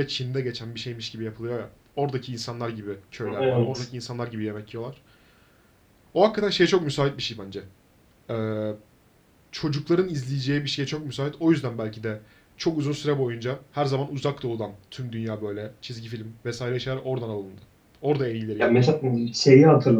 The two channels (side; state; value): both; identical; correlation 1.00